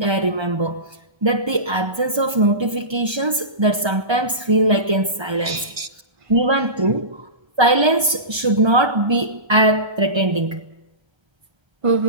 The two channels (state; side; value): late; left; 1.3 ms